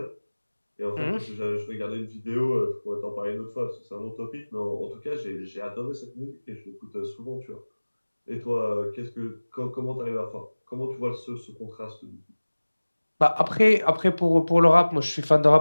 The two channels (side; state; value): both; inverted; correlation -1.00